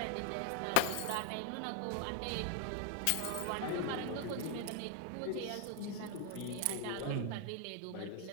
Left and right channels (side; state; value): both; different; correlation 0.01